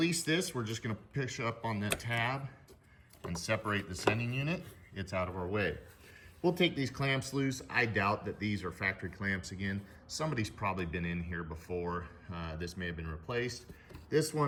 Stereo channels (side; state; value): both; identical; correlation 1.00